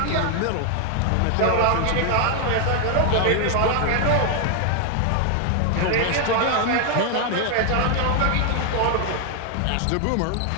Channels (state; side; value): different; both; correlation 0.00